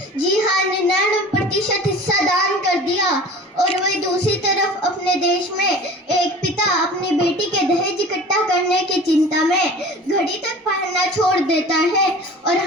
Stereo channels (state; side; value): normal; both; correlation 0.41